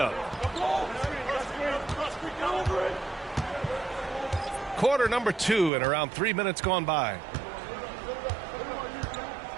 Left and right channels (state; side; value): drops out; left; at 5.7 s